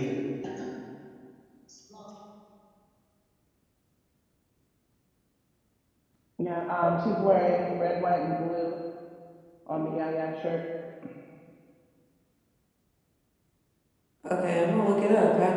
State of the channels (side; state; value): both; identical; correlation 1.00